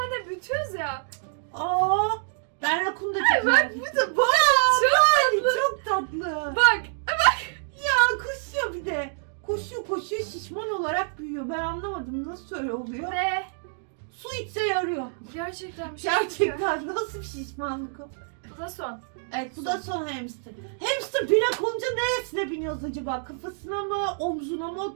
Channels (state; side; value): silent; left; digital silence